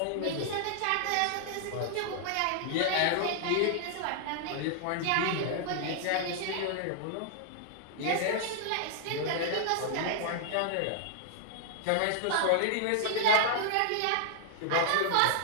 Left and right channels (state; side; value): different; both; correlation -0.01